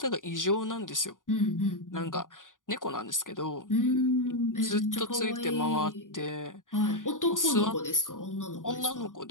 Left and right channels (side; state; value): right; late; 0.88 ms